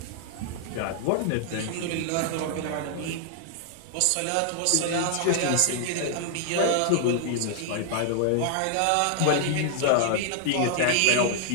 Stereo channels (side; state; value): both; different; correlation 0.00